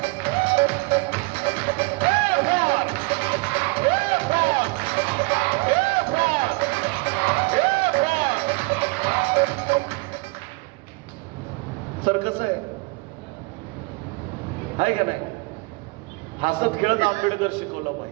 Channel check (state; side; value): quieter; left; 27.5 dB